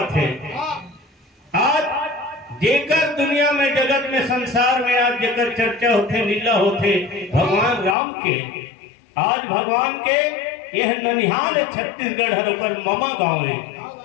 है आज जेकर दुनिया में जगत में संसार में आज जेकर चर्चा होते लीला होते भगवान राम के आज भगवान के यह ननिहाल है छत्तीसगढ़ हर ममा गांव है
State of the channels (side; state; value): right; drops out; at 8.0 s